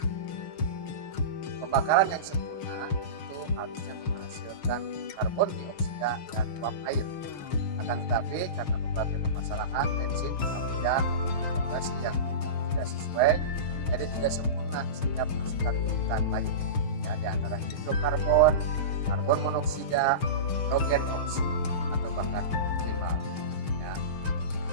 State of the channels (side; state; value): right; late; 6.5 ms